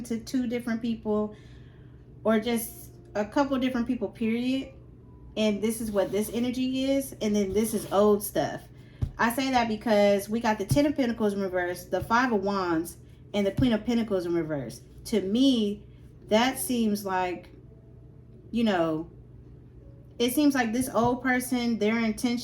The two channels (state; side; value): identical; both; correlation 1.00